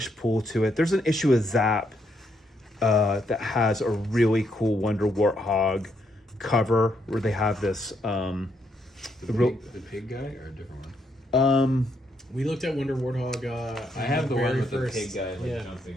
pull to it. There's an issue with Zap that has a really cool Wonder Warthog cover where they have this. The real- pig guy or a different one? We looked at Wonder Warthog. I have the one very with first, the pig guy yeah, jumping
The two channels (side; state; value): both; normal; correlation 0.76